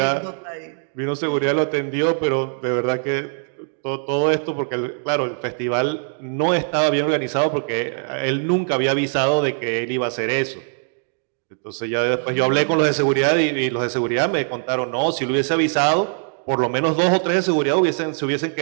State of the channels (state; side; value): silent; left; digital silence